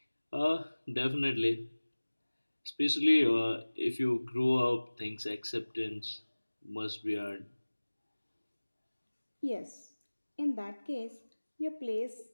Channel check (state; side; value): inverted; both; correlation -1.00